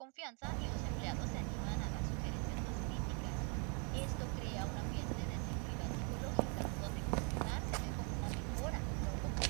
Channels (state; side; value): quieter; left; 36.6 dB